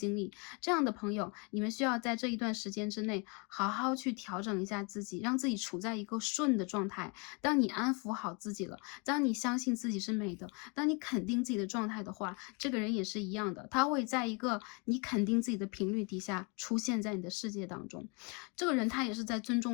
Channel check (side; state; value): right; quieter; 32.6 dB